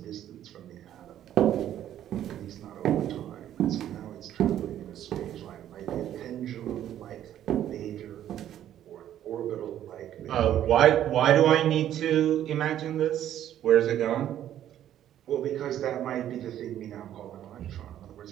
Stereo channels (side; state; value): left; quieter; 11.4 dB